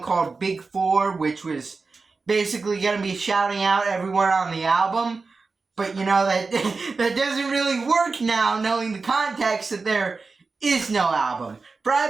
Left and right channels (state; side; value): quieter; left; 4.2 dB